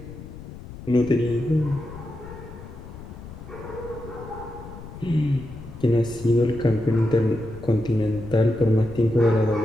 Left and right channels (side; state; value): left; noise; rumble, 14 dB below the sound